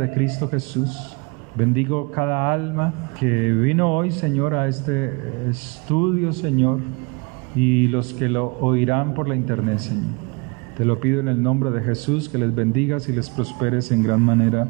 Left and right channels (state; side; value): quieter; left; 29.4 dB